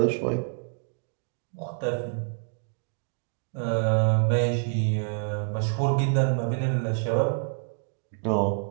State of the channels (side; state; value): left; silent; digital silence